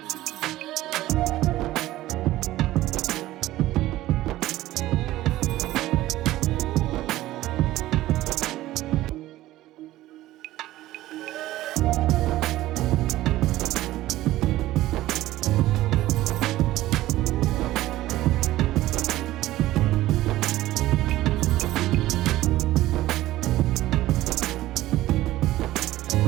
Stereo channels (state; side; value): quieter; left; 15.8 dB